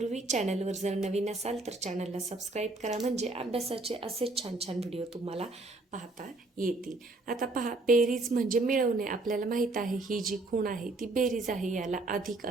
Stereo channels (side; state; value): left; quieter; 3.0 dB